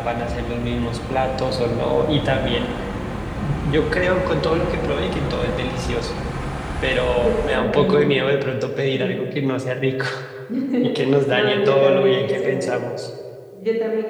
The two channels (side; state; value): both; identical; correlation 1.00